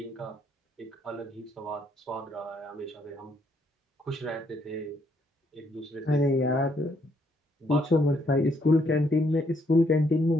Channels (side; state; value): both; normal; correlation 0.72